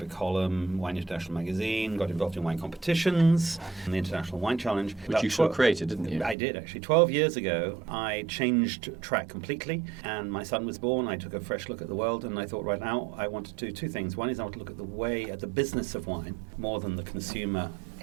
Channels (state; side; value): drops out; left; at 6.4 s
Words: column, Wine International magazine, got involved in wine competitions, and the International Wine Challenge. Which you sort of created, didn't you? I did, actually. 12 years ago, I changed track completely, and my son was born. I took a fresh look at the world, and I thought right now I want to do two things. One is I want to look at the business of wine, more than the consumer